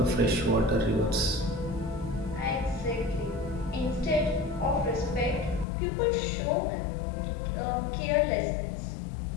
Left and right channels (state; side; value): drops out; right; at 5.7 s